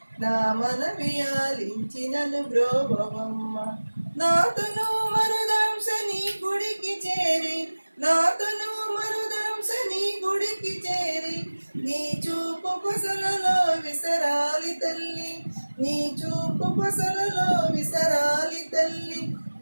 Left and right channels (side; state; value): both; inverted; correlation -1.00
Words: నా మనవి ఆలించినను బ్రోవమ్మ, నాతను మరుదంశ నీ గుడికి చేరి, నాతను మరుదంశ నీ గుడికి చేరి, నీ చూపు కొసలలో విసరాలి తల్లి, నీ చూపు కొసలలో విసరాలి తల్లి,